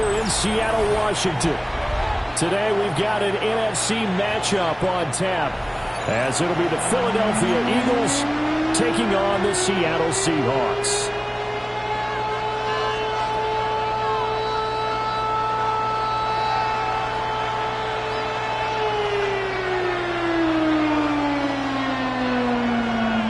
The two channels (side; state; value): both; identical; correlation 1.00